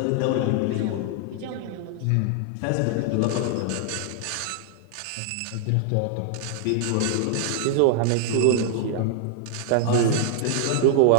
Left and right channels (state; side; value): different; both; correlation 0.00